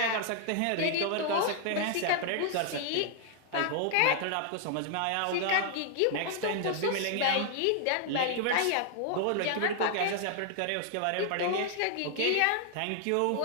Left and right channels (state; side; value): different; both; correlation 0.00